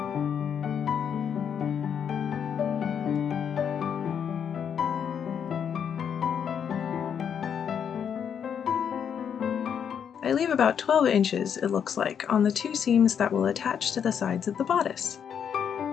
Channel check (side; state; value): right; quieter; 7.9 dB